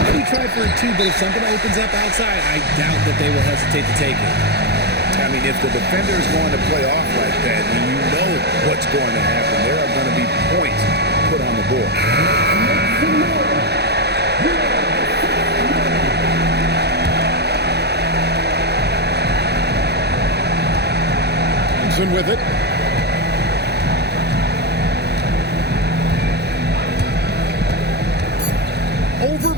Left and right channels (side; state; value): left; late; 0.48 ms